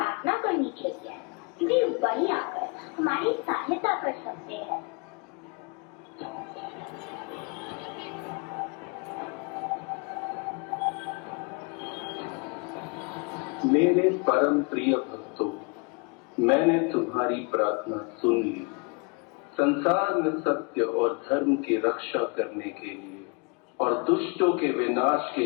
करनी चाहिए। वे वही आकर हमारी सहायता कर सकते हैं। मेरे परम प्रिय भक्तों, मैंने तुम्हारी प्रार्थना सुन ली। संसार में सत्य और धर्म की रक्षा करने के लिए और दुष्टों के विनाश के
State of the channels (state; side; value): quieter; right; 32.8 dB